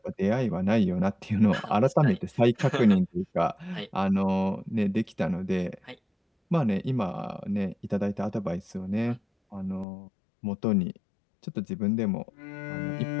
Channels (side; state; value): right; drops out; at 9.9 s